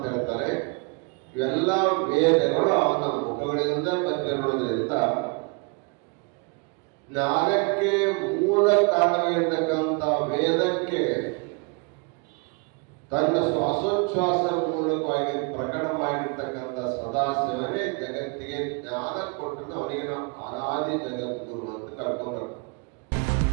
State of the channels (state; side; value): quieter; left; 32.8 dB